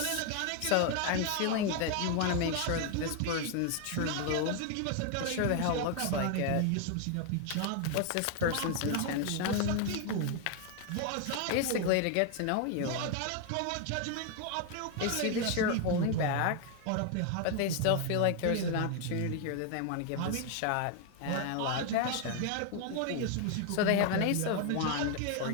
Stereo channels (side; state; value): both; different; correlation 0.01